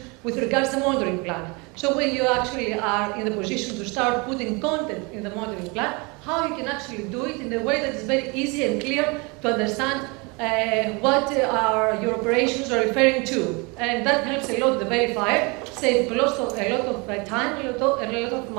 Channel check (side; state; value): left; quieter; 28.8 dB